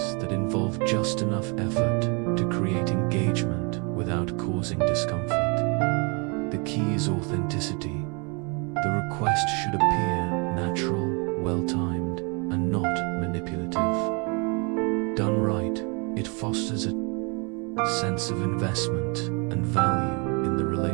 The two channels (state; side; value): quieter; left; 32.7 dB